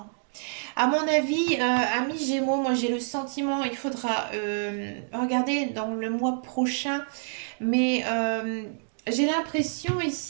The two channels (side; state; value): left; silent; digital silence